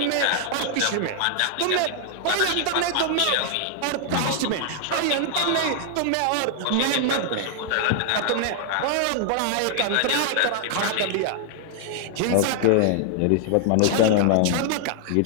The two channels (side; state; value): both; different; correlation -0.01